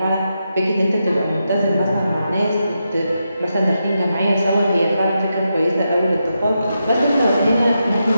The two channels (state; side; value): inverted; both; correlation -0.86